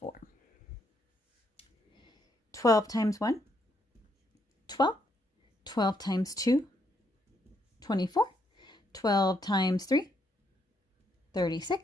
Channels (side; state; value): both; normal; correlation 0.75